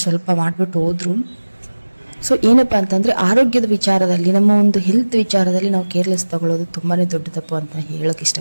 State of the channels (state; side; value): inverted; both; correlation -1.00